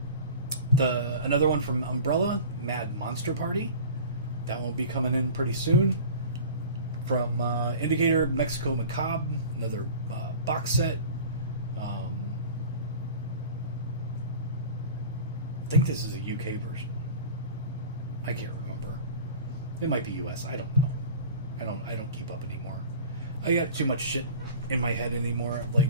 Another one from Umbrella, Mad Monster Party. That one will be coming in pretty soon. From Indicator, Mexico Macabre, another box set. I think this is a UK version. I can't remember. It might be US. I don't know. I don't keep up anymore. I got too much shit in my head anymore.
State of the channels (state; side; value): inverted; both; correlation -0.40